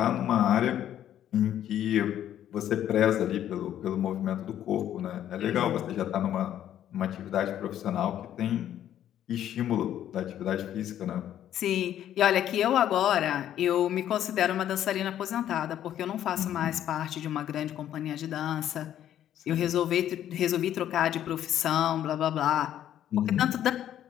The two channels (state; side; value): quieter; right; 11.1 dB